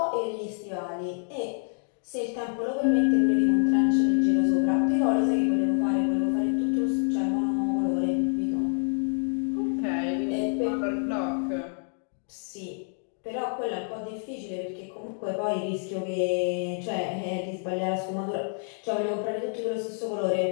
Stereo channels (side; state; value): right; silent; 57 dB below the other